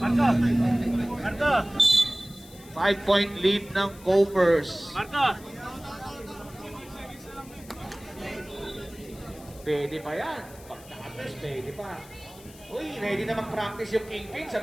Marco! 5-point lead ng Coppers. Marco! Pwede pa yan. Pag na-address, pwede pa. Uy, ready na mag-practice yung Kingpin sa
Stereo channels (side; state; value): left; noise; hiss, 21 dB below the sound